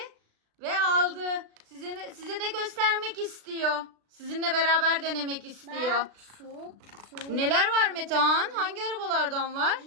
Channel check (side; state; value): left; late; 36 ms